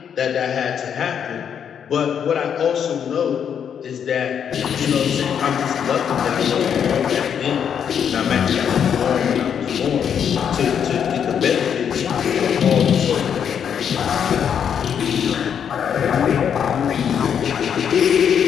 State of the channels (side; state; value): right; quieter; 8.1 dB